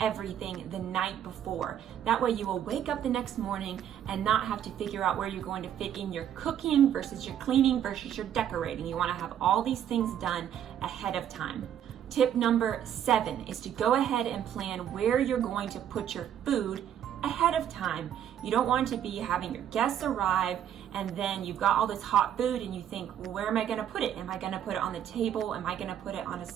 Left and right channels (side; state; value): left; quieter; 10.0 dB